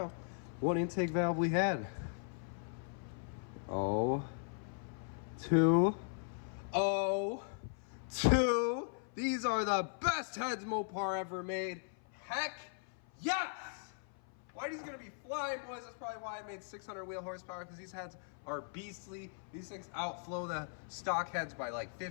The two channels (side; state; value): right; silent; 52 dB below the other